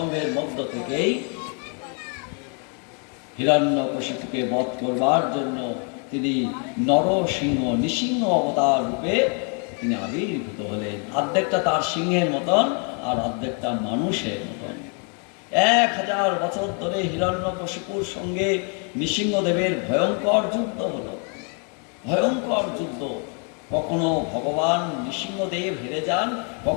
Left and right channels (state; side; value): quieter; right; 39.5 dB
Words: মধ্য থেকেই হিরণ্যকশিপুকে বধ করবার জন্য তিনি নরসিংহ, নৃসিংহ অবতার রূপে তিনি আবির্ভূত হলেন। অর্ধেকটা তার সিংহের মতন আর অর্ধেকটা মানুষের মতন। 1000 বছর ধরে হিরণ্যকশিপুর সঙ্গে নৃসিংহদেবের ভয়ঙ্কর যুদ্ধ হলো, ভয়ঙ্কর যুদ্ধ। কখনো ভগবান নৃসিংহদেব হেরে যান,